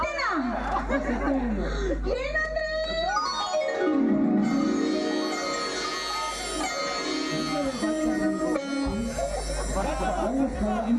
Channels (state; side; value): identical; both; correlation 1.00